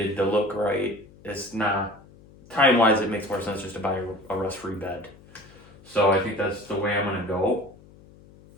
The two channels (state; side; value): noise; left; hum, 24 dB below the sound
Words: to look right. It's not time-wise. It makes more sense just to buy a rust-free bed. So I think that's the way I'm gonna go.